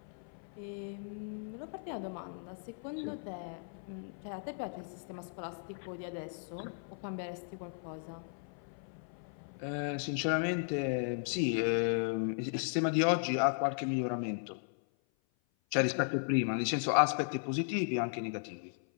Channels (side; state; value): right; silent; 54 dB below the other